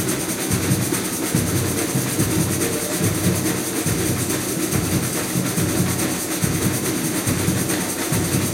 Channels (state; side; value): identical; both; correlation 1.00